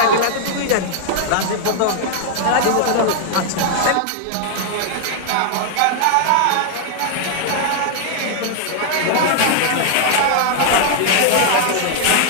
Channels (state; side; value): different; both; correlation -0.01